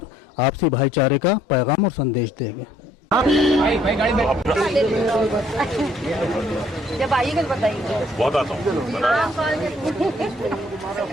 आपसी भाईचारे का पैगाम और संदेश देंगे। जब आइएगा तो बताइए। बहुत आता हूँ।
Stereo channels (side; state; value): both; normal; correlation 0.63